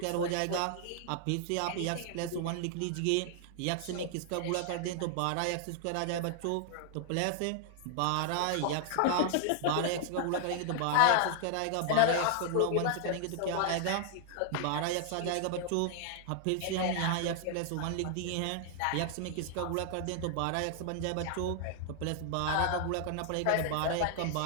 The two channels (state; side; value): different; both; correlation 0.00